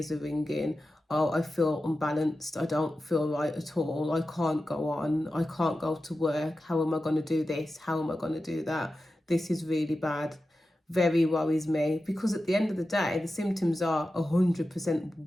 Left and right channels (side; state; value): both; normal; correlation 0.93